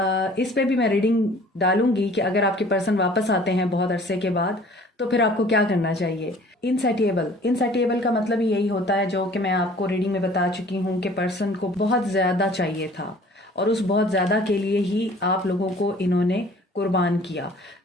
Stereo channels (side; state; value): both; normal; correlation 0.51